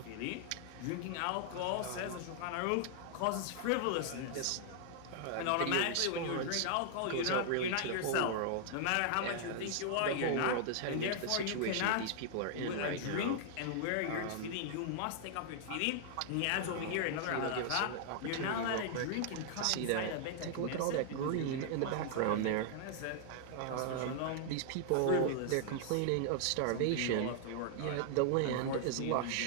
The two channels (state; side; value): different; both; correlation -0.01